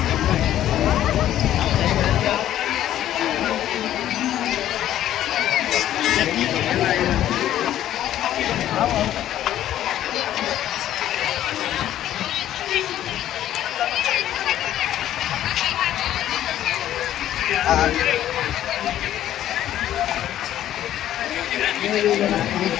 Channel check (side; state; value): right; quieter; 12.2 dB